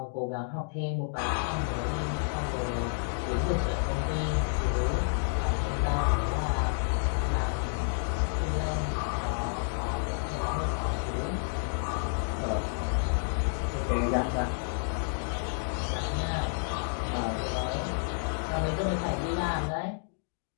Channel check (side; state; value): right; silent; digital silence